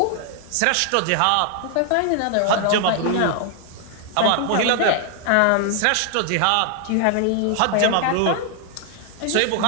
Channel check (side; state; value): both; different; correlation 0.00